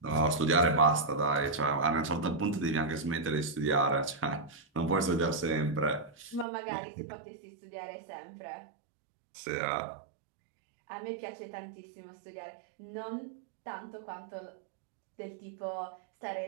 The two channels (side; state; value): left; drops out; at 6.5 s